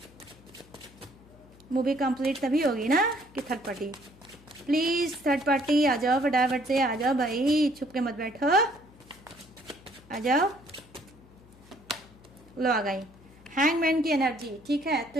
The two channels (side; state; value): left; noise; hum, 25 dB below the sound